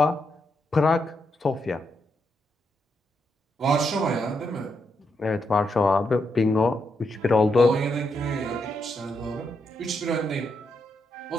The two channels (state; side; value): normal; both; correlation 0.81